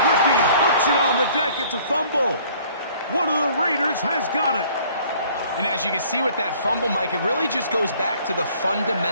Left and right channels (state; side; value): inverted; both; correlation -0.56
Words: rookie puts it on the deck. It's a fumble. One of the Raiders has got it. And as you can see with that fumble, Mike, it really just goes back to the